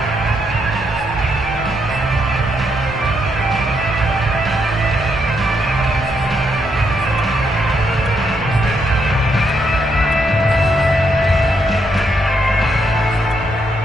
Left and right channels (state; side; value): normal; both; correlation 0.77